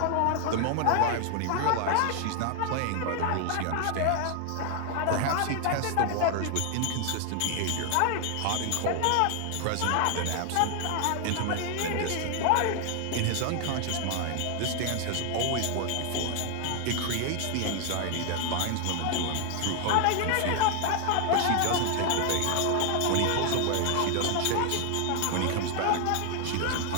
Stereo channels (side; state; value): both; different; correlation 0.00